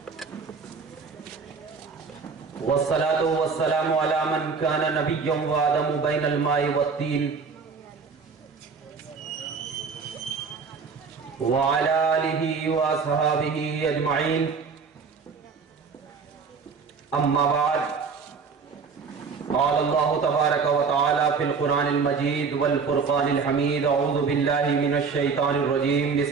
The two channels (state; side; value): quieter; left; 5.3 dB